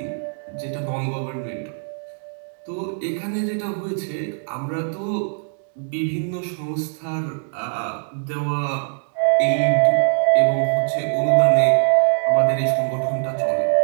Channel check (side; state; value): left; silent; digital silence